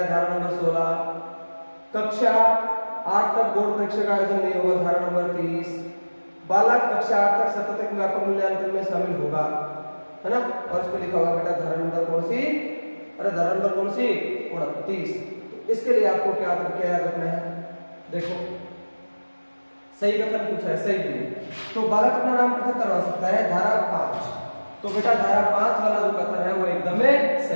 धारा नंबर 16। कक्षा 8 तक बोर्ड परीक्षा का आयोजन नहीं होगा, धारा नंबर 30। बालक कक्षा 8 तक सतत व्यापक मूल्यांकन में शामिल होगा, है ना। और इस पे लिखा हुआ बेटा धारा नंबर कौन सी, अरे धारा नंबर कौन सी, 29। तो इसके लिए आपको क्या याद रखना है, देखो सही कथन पूछा है, सही नहीं। तो बालक अपना नाम पृथक करवा सकता है, धारा 5। तो बेटा धारा 5 वाला जो कथन है वो एकदम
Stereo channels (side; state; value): both; inverted; correlation -1.00